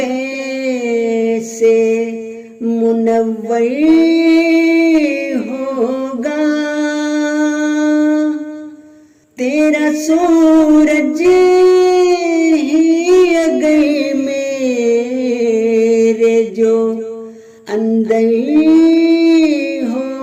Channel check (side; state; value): both; identical; correlation 1.00